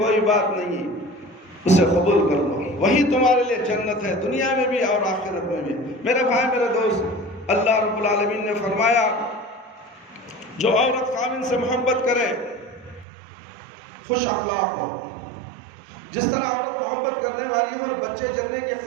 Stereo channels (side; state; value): left; drops out; at 13.1 s